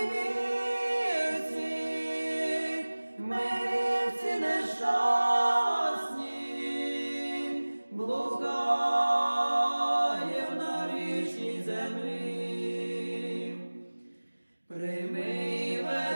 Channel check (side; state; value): both; inverted; correlation -1.00